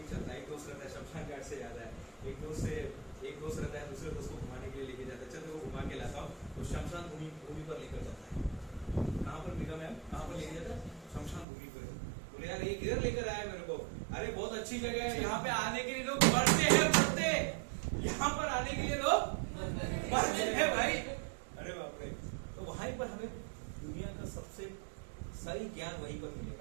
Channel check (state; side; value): drops out; left; at 11.5 s